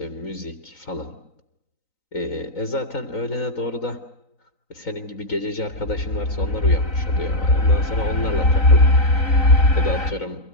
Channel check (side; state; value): right; late; 3.9 ms